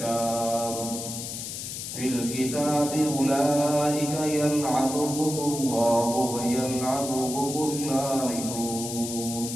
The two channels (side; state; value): left; noise; hiss, 7 dB below the sound